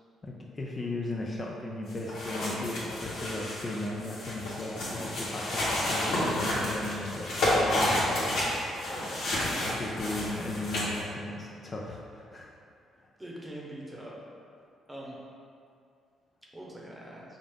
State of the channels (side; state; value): both; normal; correlation 0.73